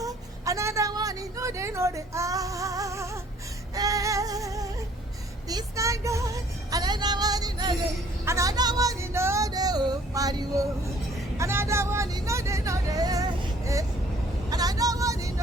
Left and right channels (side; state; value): both; normal; correlation 0.58